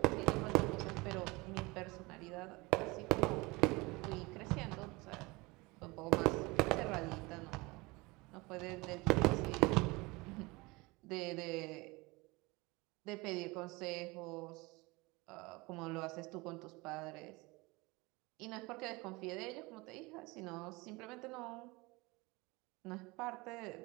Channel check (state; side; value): quieter; left; 24.1 dB